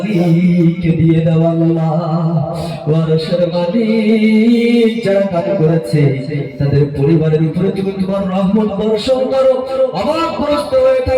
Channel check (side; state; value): both; identical; correlation 1.00